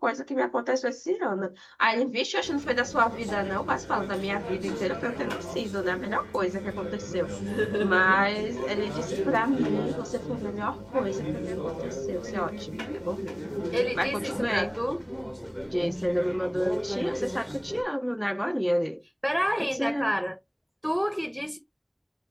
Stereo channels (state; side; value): identical; both; correlation 1.00